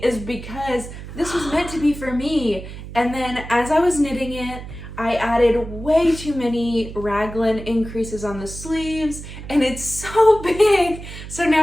is because this was meant to be for me. And then as I was knitting it, I added way too many raglan increases on the sleeves, and it's so big. So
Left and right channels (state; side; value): noise; right; hum, 12 dB below the sound